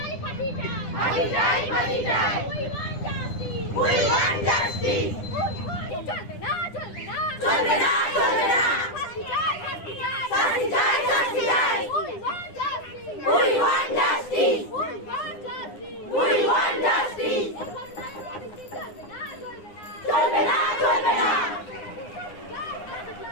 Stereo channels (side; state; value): right; late; 9.8 ms